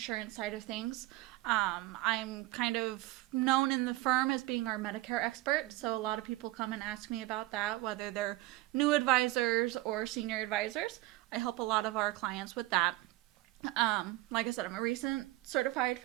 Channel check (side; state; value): left; quieter; 18.7 dB